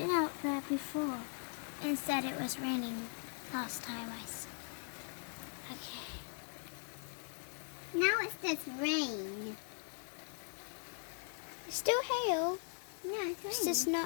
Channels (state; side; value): silent; right; 51 dB below the other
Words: out there before and said it was raining last time I saw. Okay. Now it's just rain. Still hail. No, it's rain. It's just